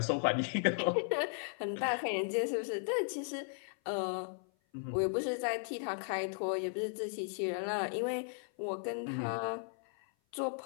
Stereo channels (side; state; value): right; silent; 54 dB below the other